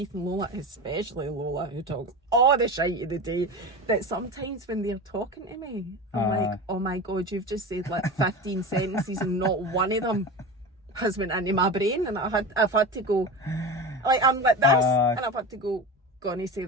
and Lola, especially Lola, who talks all the shite of the day, that sometimes when they're talking to me, I'm like, oh my God, you've just said like 15 sentences and not one of them has went into my brain. And I've had to go, like, I'm like this, and I've had to go, gonna say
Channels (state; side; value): normal; both; correlation 0.27